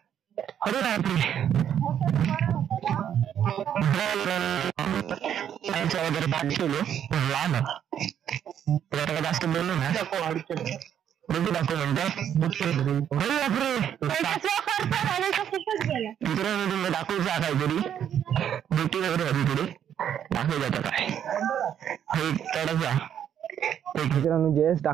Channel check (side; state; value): left; quieter; 9.5 dB